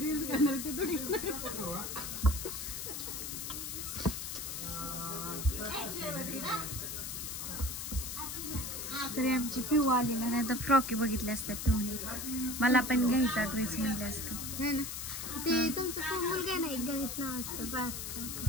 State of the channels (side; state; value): left; noise; hiss, 5 dB below the sound